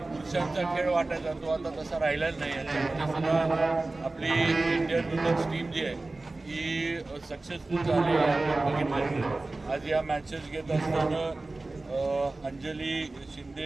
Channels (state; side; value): quieter; left; 3.1 dB